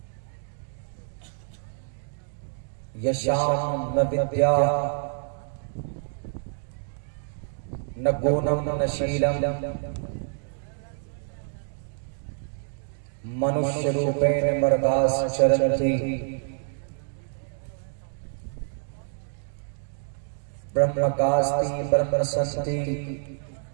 Yasham na vidya na gunam na Sheelam मनुष्य रूपेण मर्दास चरन्ति ब्रह्मकास्ति ब्रह्मसंति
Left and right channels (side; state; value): left; silent; digital silence